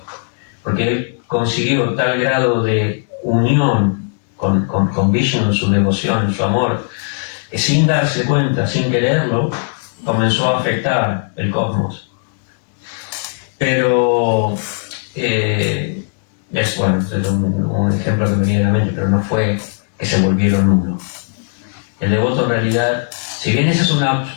porque él consiguió tal grado de unión con Vishnu en su devoción, en su amor, que sin darse cuenta, sin quererlo, comenzó a afectar el cosmos. Pero es un ejemplo que me viene a la mente, pero no fue que se volvieron uno. El devoto en realidad, si bien esa es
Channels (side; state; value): right; silent; 68 dB below the other